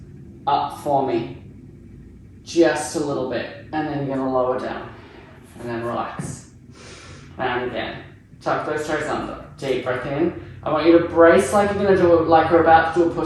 up for me. Just a little bit. And then you're going to lower down. And then relax. And again. Tuck those toes under. Deep breath in. I want you to brace like you're going to do it, like we're about to do a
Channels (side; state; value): both; identical; correlation 1.00